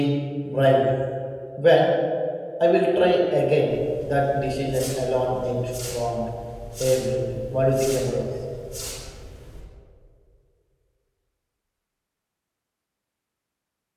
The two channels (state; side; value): identical; both; correlation 1.00